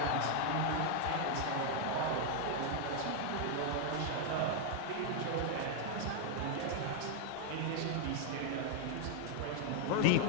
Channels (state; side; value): different; both; correlation 0.00